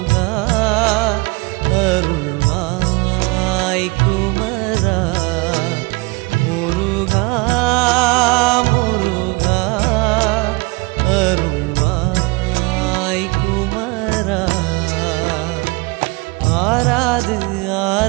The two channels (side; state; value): left; quieter; 26.0 dB